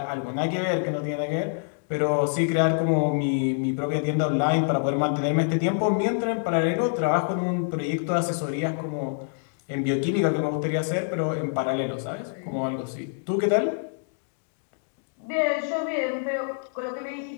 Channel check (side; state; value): right; silent; digital silence